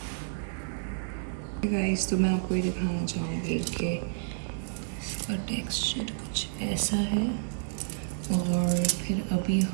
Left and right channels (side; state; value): left; silent; digital silence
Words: गाइस, तो मैं आपको ये दिखाना चाहूँगी कि इसका टेक्सचर कुछ ऐसा है, और फिर अभी